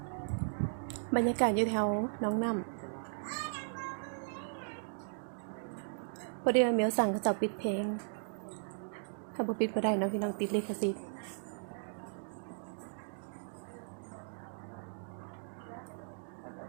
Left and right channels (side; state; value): left; silent; digital silence